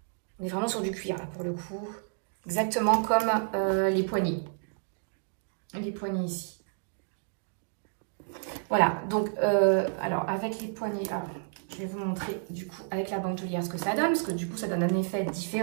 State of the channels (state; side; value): silent; left; digital silence